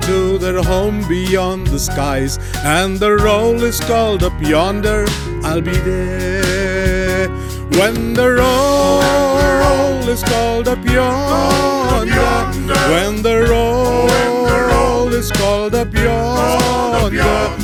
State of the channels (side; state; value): both; identical; correlation 1.00